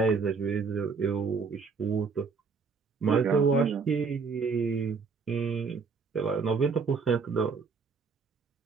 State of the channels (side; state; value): left; quieter; 5.0 dB